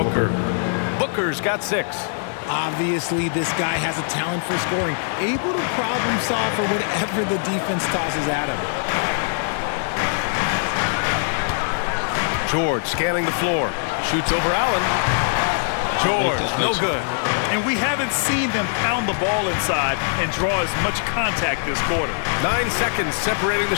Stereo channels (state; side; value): silent; right; digital silence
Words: Booker's got 6. Obviously, this guy has a talent for scoring, able to problem solve for whatever the defense tosses at him. George scanning the floor. Shoots over Allen. George, no good. And we haven't seen them pound the ball inside and draw as much contact this quarter. 9 seconds separating the